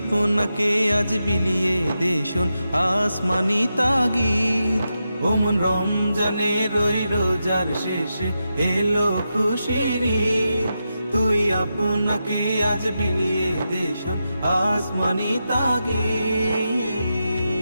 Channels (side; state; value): both; inverted; correlation -0.88